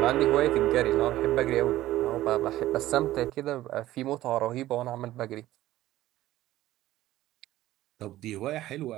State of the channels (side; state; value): left; quieter; 15.2 dB